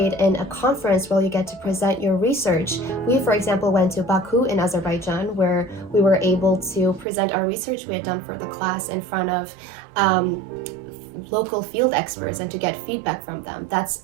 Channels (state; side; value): drops out; left; at 7.1 s